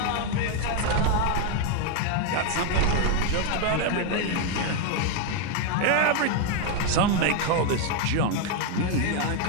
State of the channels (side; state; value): both; different; correlation 0.01